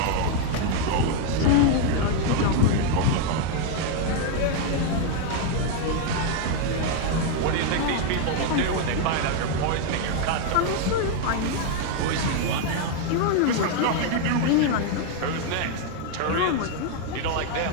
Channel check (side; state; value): both; different; correlation 0.00